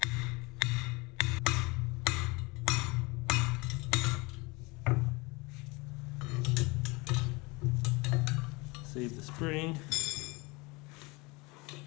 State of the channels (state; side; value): quieter; right; 25.3 dB